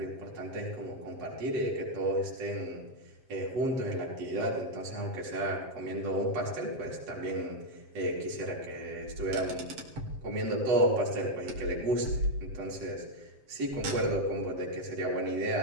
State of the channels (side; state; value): left; late; 7.6 ms